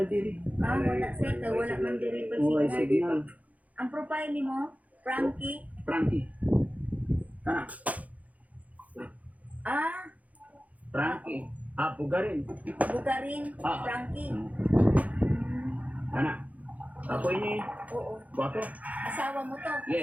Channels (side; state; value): left; late; 0.072 ms